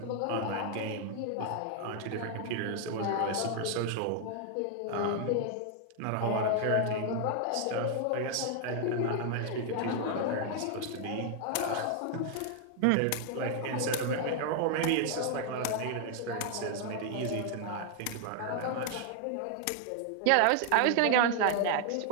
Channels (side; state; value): both; different; correlation 0.00